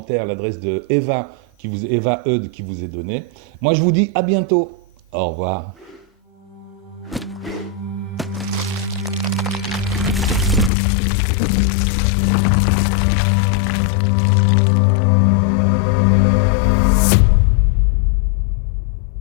l'adresse de Eva Eud qui vous est donnée. Moi, je vous dis à bientôt. Au revoir.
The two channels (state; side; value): drops out; right; at 10.7 s